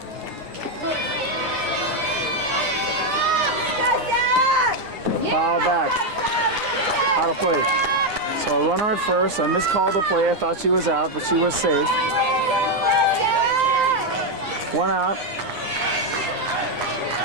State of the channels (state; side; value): late; left; 9.5 ms